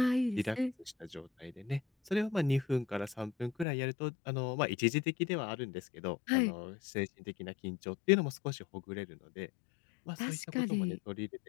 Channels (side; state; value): right; drops out; at 3.7 s